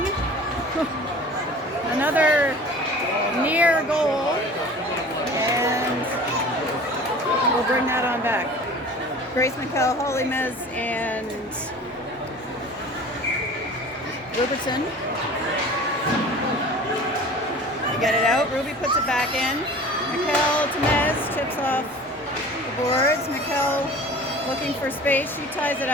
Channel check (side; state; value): both; normal; correlation 0.42